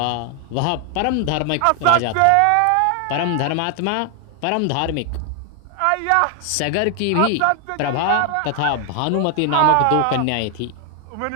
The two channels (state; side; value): different; both; correlation 0.00